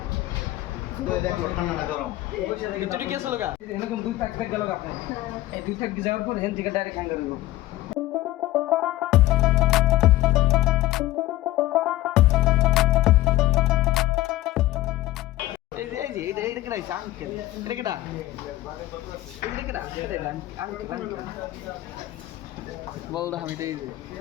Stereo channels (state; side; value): quieter; right; 16.1 dB